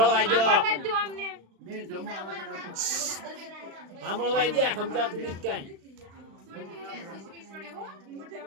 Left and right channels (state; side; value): late; left; 36 ms